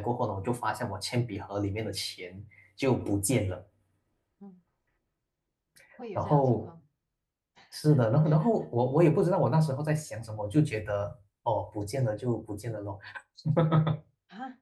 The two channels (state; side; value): identical; both; correlation 1.00